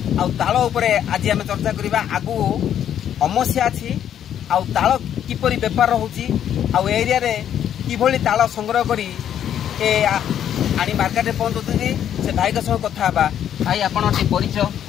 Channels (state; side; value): quieter; right; 9.9 dB